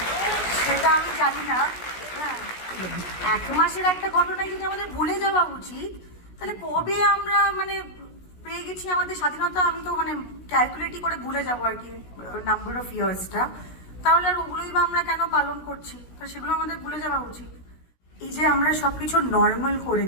সেটা আমি জানি না। হ্যাঁ, 1 মাসের একটা ঘটনায় যদি আমাদের ভুলে যাওয়া উচিত, তাহলে কবে আমরা মানে পেয়ে গেছি আমাদের স্বাধীনতা? আমি তো মানে ক্যালকুলেটই করে ভুলে যাবো আর কি নাম্বার অফ ইয়ার্সটা। তাহলে আর ওগুলোই বা আমরা কেন পালন করছি? তো সেগুলো আমাদের ভুলে যাওয়া উচিত। এই যে আমরা সবকিছু নর্মাল করে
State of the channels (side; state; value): right; late; 16 ms